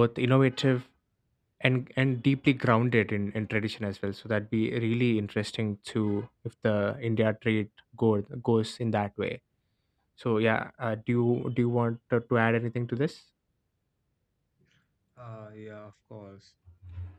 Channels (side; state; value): both; identical; correlation 1.00